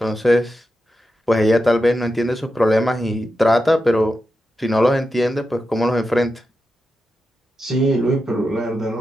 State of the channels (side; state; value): both; normal; correlation 0.89